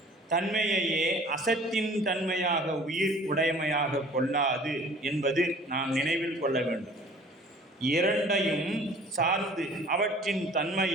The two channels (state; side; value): normal; both; correlation 0.49